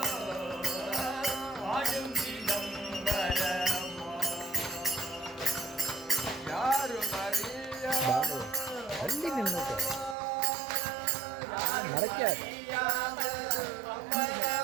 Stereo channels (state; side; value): drops out; left; at 10.2 s